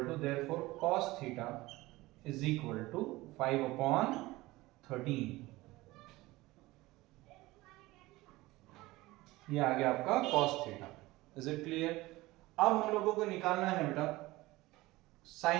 to, therefore cos theta is equal to 5 upon 13। ये आ गया आपका cos theta. Is it clear? अब हम लोगों को निकालना है बेटा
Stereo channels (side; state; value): left; quieter; 19.5 dB